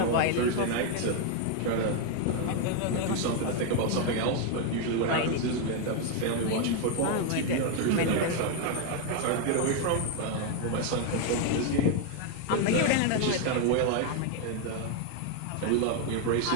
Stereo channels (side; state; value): both; different; correlation 0.01